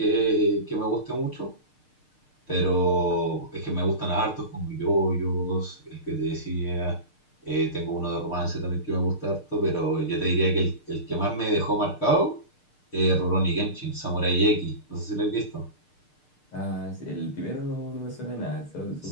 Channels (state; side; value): late; right; 6.6 ms